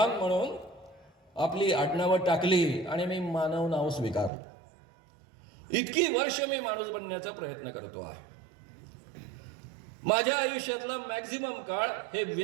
म्हणून आपली आडनावं टाकली आणि मी मानव नाव स्वीकारलं. इतकी वर्ष मी माणूस बनण्याचा प्रयत्न करतो आहे. माझ्या आयुष्यातला मॅक्झिमम काळ हे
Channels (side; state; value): left; drops out; at 4.3 s